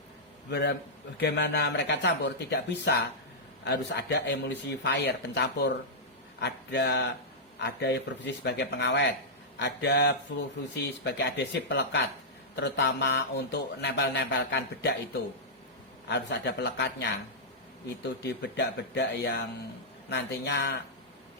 Bagaimana mereka campur? Tidak bisa, harus ada emulsifier, pencampur. Ada yang berfungsi sebagai pengawet, ada fungsi sebagai adhesif pelekat, terutama untuk nempel-nempelkan bedak itu harus ada pelekatnya. Itu di bedak-bedak yang nantinya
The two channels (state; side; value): normal; both; correlation -0.11